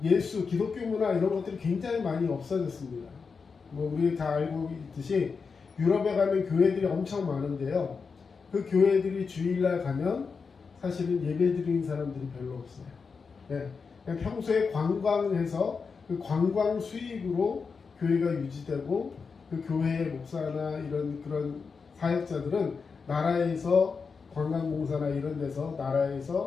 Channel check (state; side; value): quieter; right; 5.2 dB